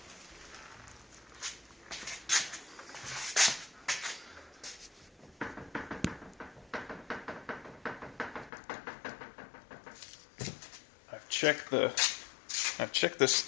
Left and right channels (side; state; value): right; drops out; at 8.5 s